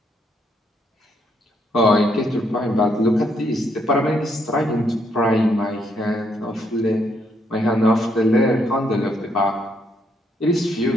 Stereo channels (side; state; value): both; normal; correlation 0.74